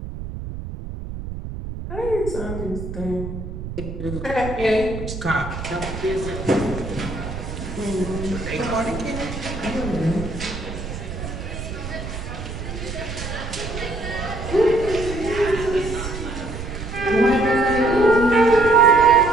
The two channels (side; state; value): right; noise; rumble, 8 dB below the sound